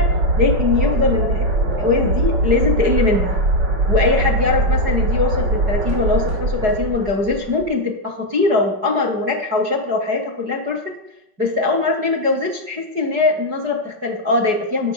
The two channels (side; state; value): left; late; 5.2 ms